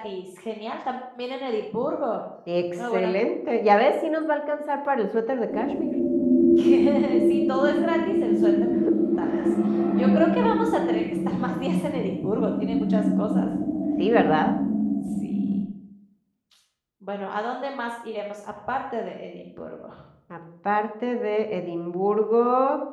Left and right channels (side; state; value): both; identical; correlation 1.00